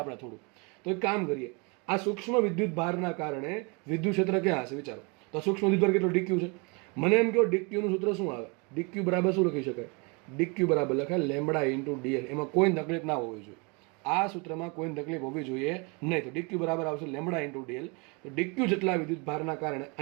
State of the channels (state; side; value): quieter; left; 30.6 dB